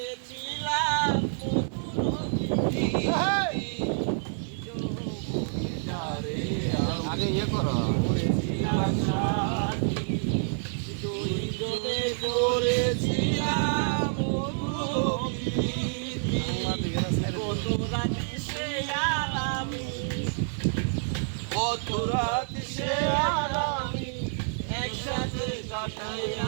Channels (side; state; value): left; silent; digital silence